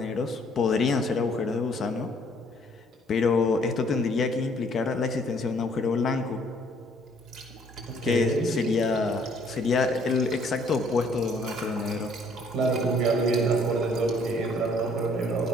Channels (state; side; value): normal; both; correlation 0.62